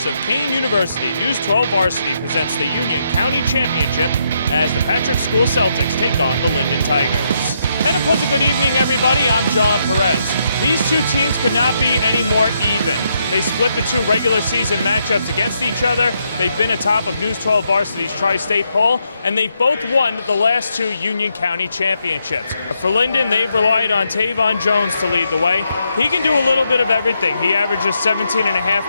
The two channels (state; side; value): inverted; both; correlation -0.78